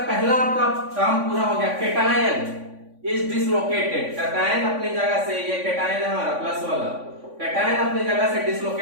पहला आपका काम पूरा हो गया, कैटायन इज डिसलोकेटेड। कैटायन अपनी जगह से, ये कैटायन है हमारा प्लस वाला, कैटायन अपनी जगह से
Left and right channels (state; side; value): late; left; 3.5 ms